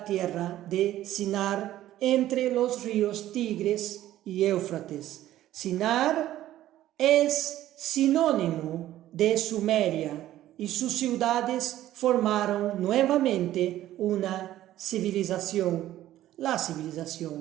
tierra de Sinar, entre los ríos Tigres y Éufrates. Sinar es sinónimo de Sumeria, y sus ciudades formaron nuevamente una civilización, la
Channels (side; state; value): left; quieter; 13.7 dB